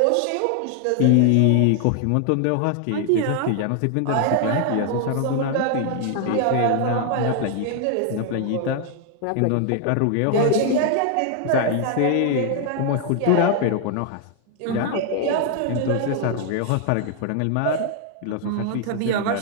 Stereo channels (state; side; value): different; both; correlation 0.00